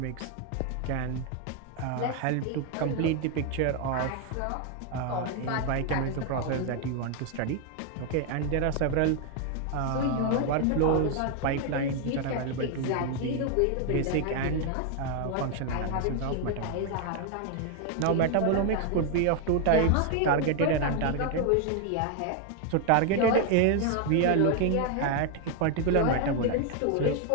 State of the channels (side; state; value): both; different; correlation 0.01